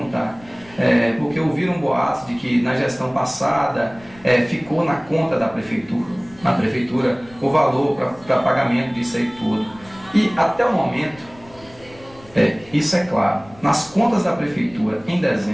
porque ouviram boatos de que na gestão passada ficou na conta da prefeitura, o valor para pagamento disso aí tudo. E até o momento, isso é claro, nas contas da prefeitura em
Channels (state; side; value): noise; left; rumble, 24 dB below the sound